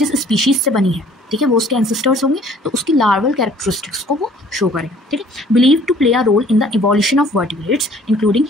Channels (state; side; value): normal; both; correlation 0.55